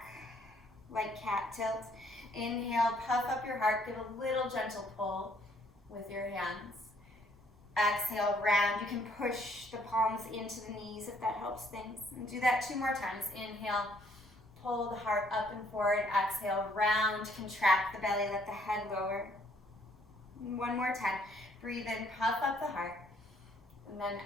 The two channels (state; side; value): normal; both; correlation 0.65